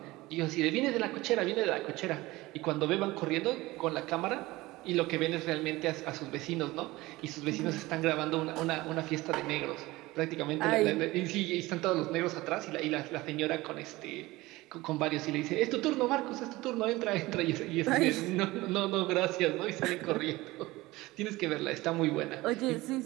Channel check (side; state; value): left; quieter; 19.7 dB